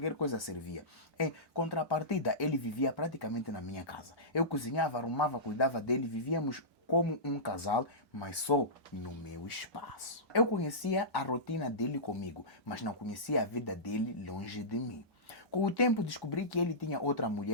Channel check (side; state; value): both; normal; correlation -0.18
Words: coisa servia. Em contrapartida, ele vivia praticamente na minha casa. Eu cozinhava, arrumava, cuidava dele, vivíamos como um casal, mas só no meu espaço. Eu conhecia a rotina dele comigo, mas não conhecia a vida dele longe de mim. Com o tempo descobri que ele tinha outra